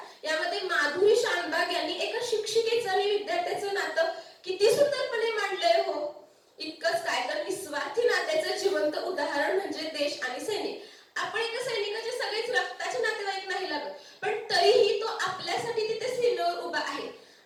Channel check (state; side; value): identical; both; correlation 1.00